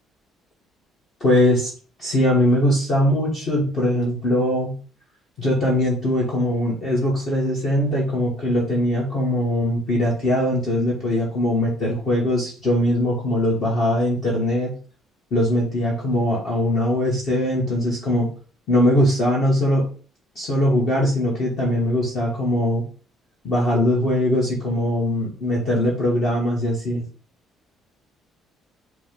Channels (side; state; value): both; normal; correlation 0.56